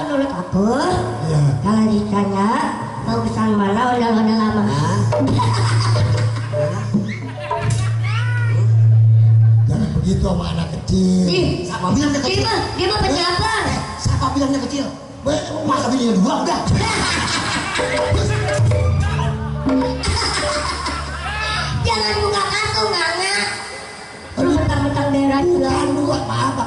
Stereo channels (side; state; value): both; identical; correlation 1.00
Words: menurut aku, Ya. kalau ditanya bagusan mana ondel-ondel lama. Jangan begitu sama anak kecil. Siapa bilang dia kecil? Dia mah pejabat. Siapa bilang dia kecil? Masa bininya dua udah. Jangan buka kartu Nana. Lu mentang-mentang daerah juga. Bukan dua, maaf